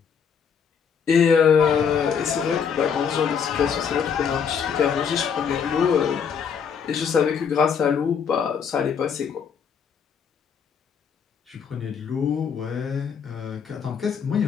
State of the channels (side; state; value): right; quieter; 6.9 dB